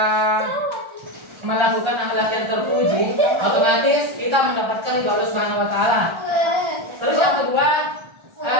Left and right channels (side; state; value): left; late; 1.4 ms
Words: melakukan akhlak yang terpuji, otomatis kita mendapatkan ridho Allah Subhanahu wa taala. Terus yang kedua,